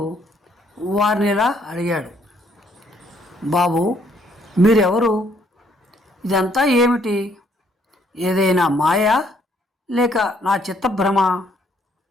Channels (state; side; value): normal; both; correlation 0.67